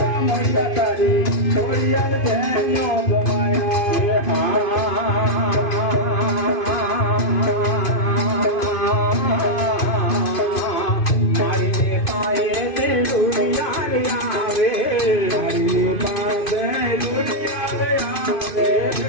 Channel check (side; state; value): right; late; 2.5 ms